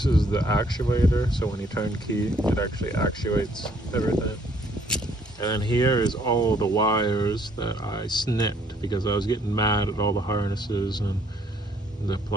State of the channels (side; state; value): both; normal; correlation 0.64